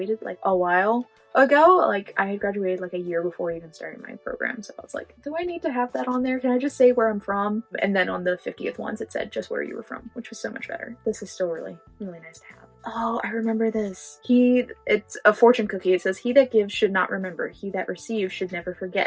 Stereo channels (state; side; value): identical; both; correlation 1.00